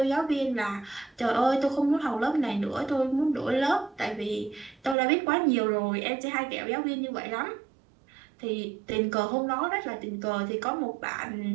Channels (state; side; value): drops out; left; at 5.0 s